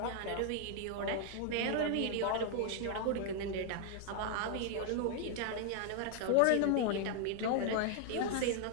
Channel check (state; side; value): different; both; correlation 0.00